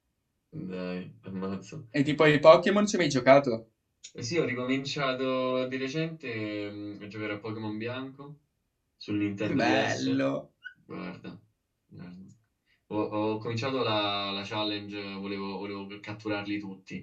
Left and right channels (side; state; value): both; identical; correlation 1.00